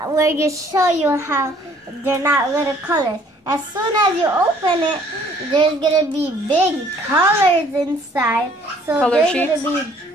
going to show you how they're not little colors. As soon as you open it, there's going to be big colors inside. So Color there's sheets? going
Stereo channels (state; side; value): normal; both; correlation 0.59